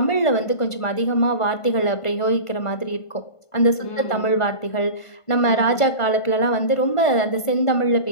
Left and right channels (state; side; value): late; right; 1.5 ms